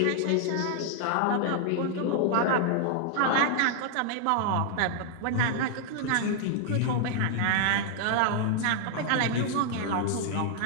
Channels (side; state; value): both; different; correlation 0.00